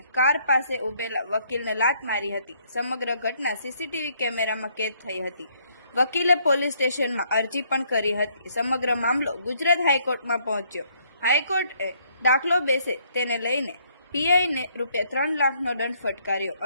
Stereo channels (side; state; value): both; inverted; correlation -0.68